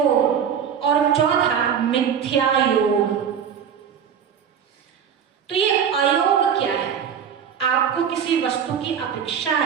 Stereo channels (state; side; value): quieter; left; 7.9 dB